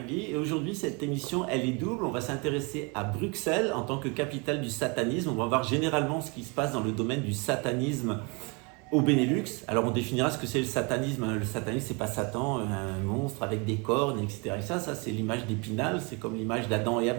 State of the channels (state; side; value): quieter; left; 30.9 dB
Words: et aujourd'hui cette émission elle est double. On va s'intéresser à Bruxelles en tant que capitale du satanisme. On va voir généralement ce qui se passe dans le domaine du satanisme au Benelux. Alors on définira ce que c'est le satanisme. Le satanisme c'est pas Satan, un monstre avec des cornes, etc. Et ça c'est l'image d'Épinal. C'est comme l'image d'Adam et